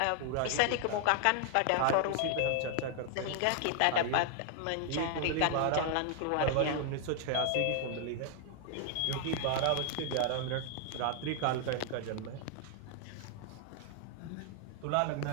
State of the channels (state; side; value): different; both; correlation 0.00